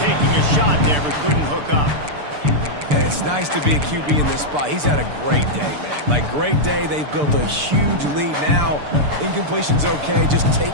taking a shot there, but couldn't hook up. And it's nice to be a QB in this spot. He's had a great day, man. Like, great day. They've built a huge lead now. Incompletion's okay. Just take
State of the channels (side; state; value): left; late; 6.8 ms